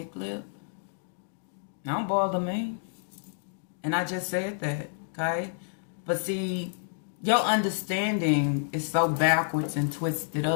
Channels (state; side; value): silent; right; digital silence